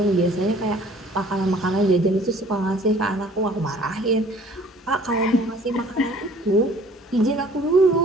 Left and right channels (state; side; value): normal; both; correlation 0.53